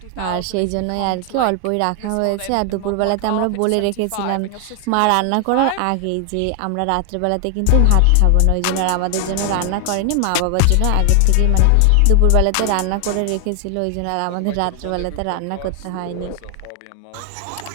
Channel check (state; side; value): different; both; correlation 0.00